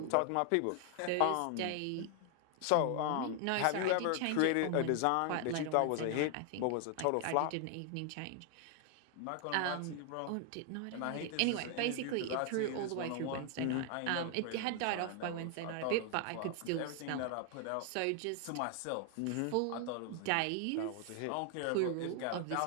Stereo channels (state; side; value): different; both; correlation 0.00